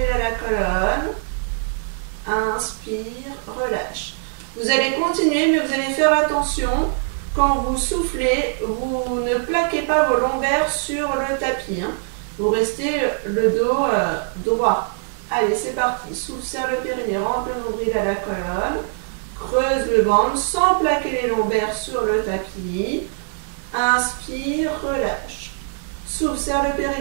à la colonne. Inspire, relâche. Vous allez continuer, mais vous allez faire attention. Quand vous soufflez, vous ne plaquez pas vos lombaires sur le tapis. Vous restez le dos droit. Allez, c'est parti. Souffle, serre le périnée, rentre le nombril à la colonne. Creuse le ventre sans plaquer les lombaires sur le tapis. Inspire, relâche. Souffle, serre le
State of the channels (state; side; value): silent; left; digital silence